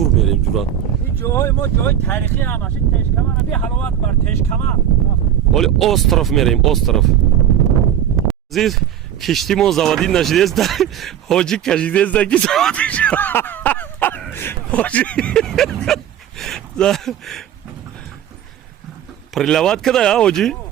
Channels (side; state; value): left; quieter; 10.1 dB